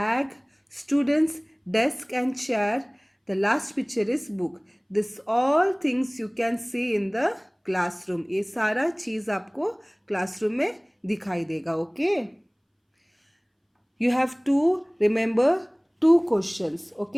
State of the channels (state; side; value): identical; both; correlation 1.00